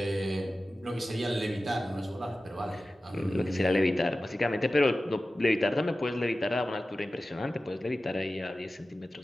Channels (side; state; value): both; normal; correlation 0.95